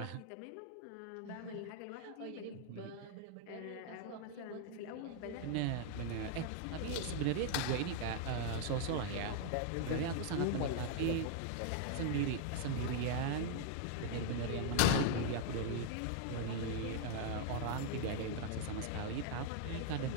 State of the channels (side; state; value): both; different; correlation -0.01